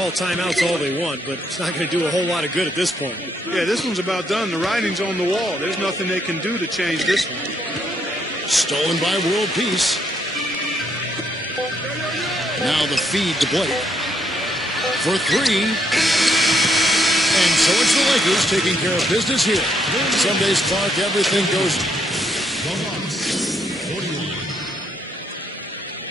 timeouts all they want, but it's not going to do a whole lot of good at this point. Yeah, this one's about done. The writing's on the wall. There's nothing they can do to change this one. Stolen by World Peace. Now the feed to Blake. For 3. And so it's the Lakers taking care of business here. Some days, Clark, everything goes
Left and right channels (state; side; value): normal; both; correlation 0.73